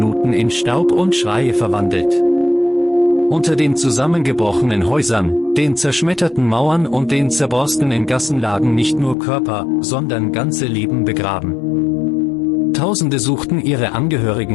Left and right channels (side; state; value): right; drops out; at 9.2 s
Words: in Staub und Schreie verwandelt. Unter den zusammengebrochenen Häusern, den zerschmetterten Mauern und den zerborstenen Gassen lagen nicht nur Körper, sondern ganze Leben begraben. Tausende suchten ihre